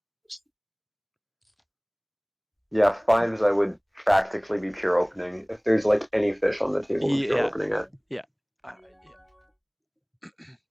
Yeah, fives I would practically be pure opening. If there's like any fish on the table, I'm pure Yeah, opening it. yeah,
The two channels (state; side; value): identical; both; correlation 1.00